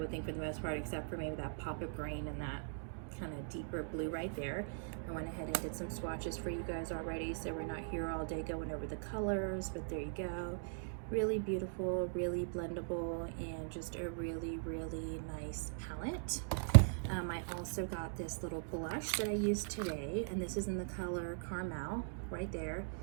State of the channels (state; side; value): silent; left; digital silence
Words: think, for the most part, except for maybe that pop of green and that kind of deeper blue right there. I went ahead and did some swatches for you guys already, so we're not here all day going over the colors, but there you go. Really beautiful, really blendable, and just a really nice palette. I also got this little blush that I used today, and this is in the color Caramel right there.